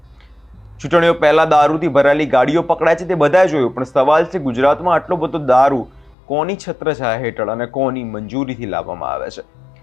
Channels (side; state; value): right; drops out; at 6.2 s